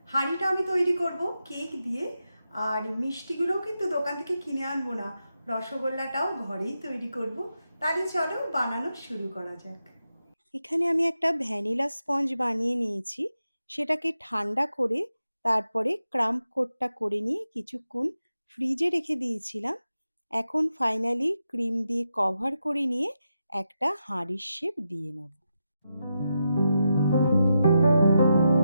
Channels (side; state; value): both; inverted; correlation -0.87